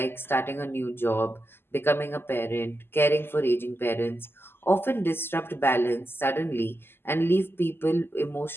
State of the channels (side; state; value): right; late; 0.11 ms